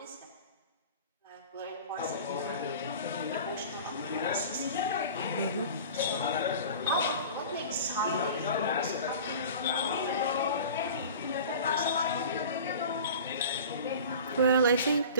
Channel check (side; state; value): both; inverted; correlation -0.39